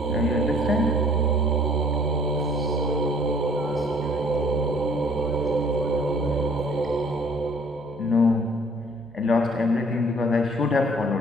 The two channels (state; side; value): normal; both; correlation 0.56